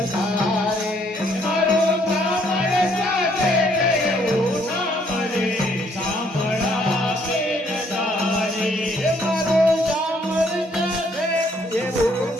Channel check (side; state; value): both; normal; correlation 0.66